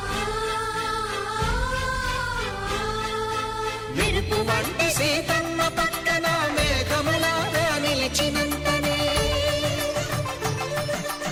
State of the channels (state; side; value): identical; both; correlation 1.00